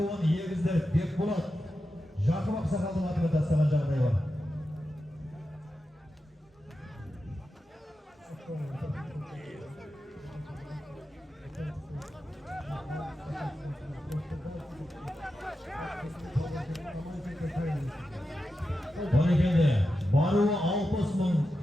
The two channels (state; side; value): normal; both; correlation 0.90